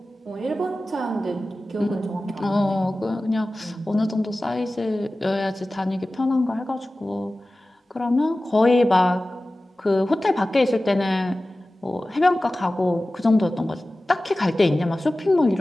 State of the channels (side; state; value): both; normal; correlation 0.96